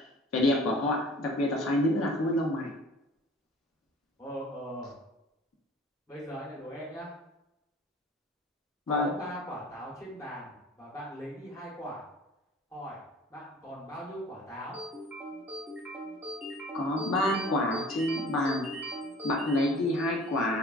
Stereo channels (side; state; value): both; normal; correlation 0.47